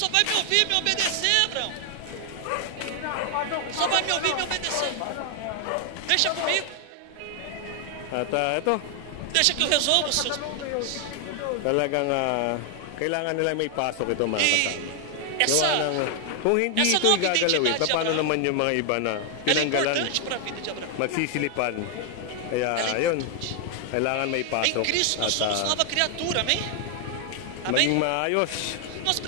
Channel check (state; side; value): different; both; correlation 0.00